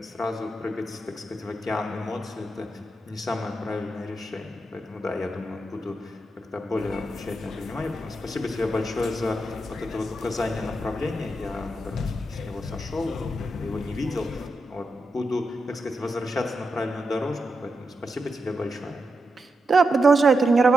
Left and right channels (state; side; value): normal; both; correlation 0.86